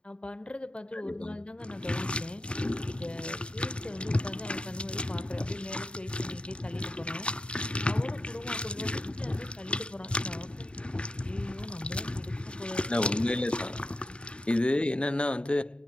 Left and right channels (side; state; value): right; late; 0.055 ms